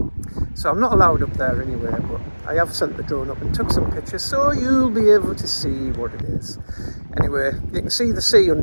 So I'm not allowed up there anyway, but I have sent the drone up and took some pictures, so you'll be able to see what it is. Anyway, you can see the sea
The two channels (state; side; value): inverted; both; correlation -1.00